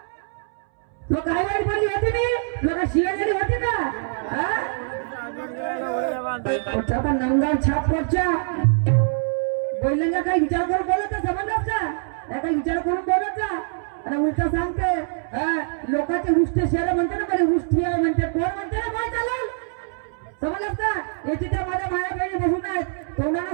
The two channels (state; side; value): silent; left; 63 dB below the other